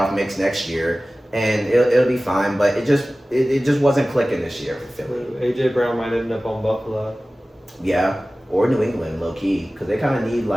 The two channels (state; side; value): normal; both; correlation 0.97